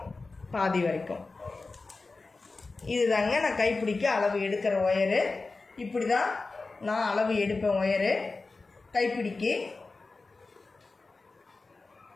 பாதி வரைக்கும். இதுதாங்க நான் கைப்பிடிக்க அளவு எடுக்கிற ஒயரு. இப்படி தான் நான் அளவு எடுப்பேன் ஒயரு கைப்பிடிக்கு.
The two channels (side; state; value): right; quieter; 3.7 dB